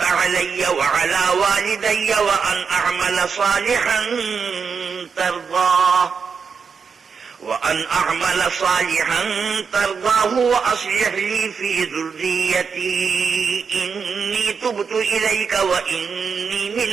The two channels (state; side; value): quieter; left; 5.8 dB